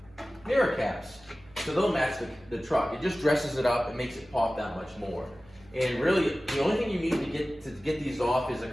mirror caps. So they'll match the truck. It just dresses it up and makes it pop that much more. And really, the only thing you need to get these off is a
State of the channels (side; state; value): right; noise; hum, 25 dB below the sound